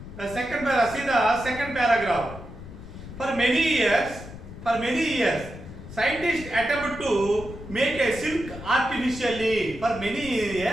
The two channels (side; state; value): left; noise; rumble, 13 dB below the sound